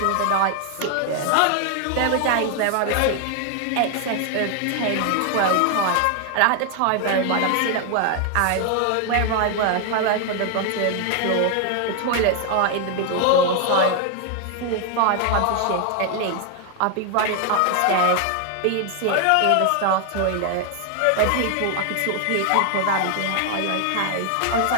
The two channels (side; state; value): both; different; correlation 0.00